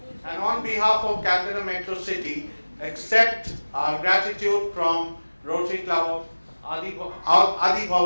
and on behalf of Calcutta Metro City, accept our gratitude from Rotary Club of Adi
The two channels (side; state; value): both; inverted; correlation -1.00